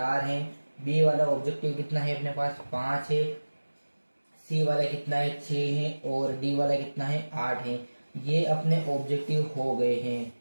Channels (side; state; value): both; inverted; correlation -1.00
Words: है। बी वाला ऑब्जेक्टिव कितना है अपने पास, 5 है। सी वाला कितना है, 6 है। और डी वाला कितना है, 8 है। ये अपने ऑब्जेक्टिव हो गए हैं,